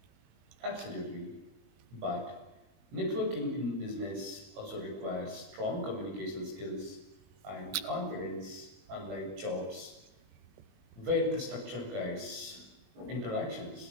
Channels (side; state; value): left; late; 20 ms